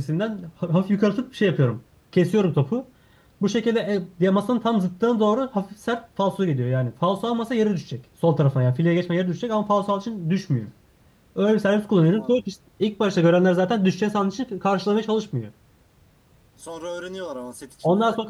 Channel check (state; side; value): identical; both; correlation 1.00